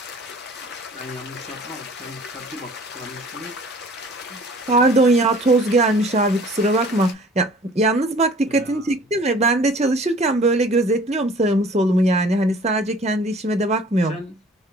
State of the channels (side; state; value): both; normal; correlation 0.50